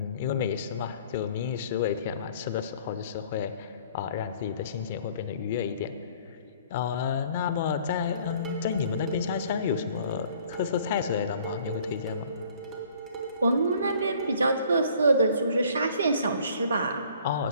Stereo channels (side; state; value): both; inverted; correlation -0.55